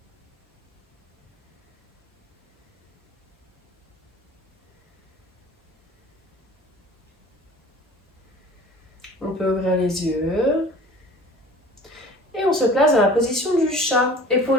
On peut ouvrir les yeux. Et on se place dans la position du chat.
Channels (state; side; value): normal; both; correlation 0.44